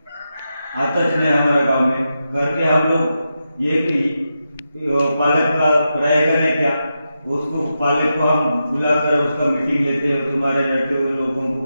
आता नहीं हमारे गांव में। घर के हम लोग ये पालक का रहेगा नहीं क्या, उसको पालक को हम बुलाकर उसका मीटिंग लेते हैं, तुम्हारे लड़के लोगों को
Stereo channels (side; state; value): both; inverted; correlation -0.88